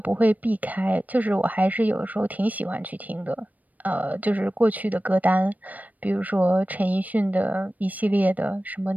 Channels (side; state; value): left; late; 0.078 ms